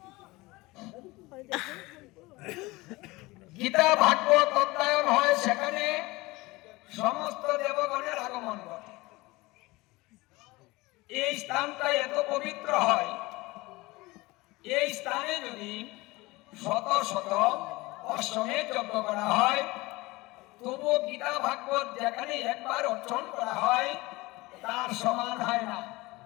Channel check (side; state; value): right; quieter; 21.7 dB